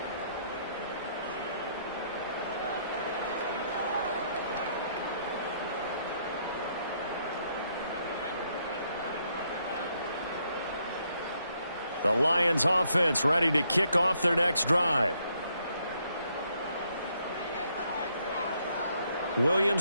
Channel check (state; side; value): inverted; both; correlation -0.73